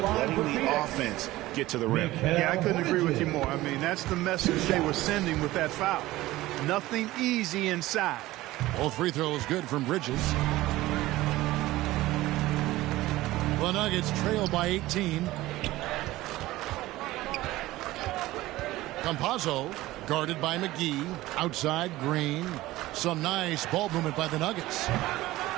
letting the offense get to the rim. Yeah, I couldn't agree with you more. I mean, that's the message they were sending with that foul. Nothing easy inside. Both free throws good from Bridges. The Nuggets trail by 18. Campazzo guarded by McGee. Outside Green. Some nice ball movement by the Nuggets.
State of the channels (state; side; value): quieter; left; 17.4 dB